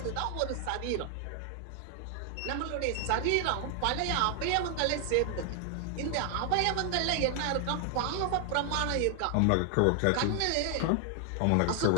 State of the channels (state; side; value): different; both; correlation 0.00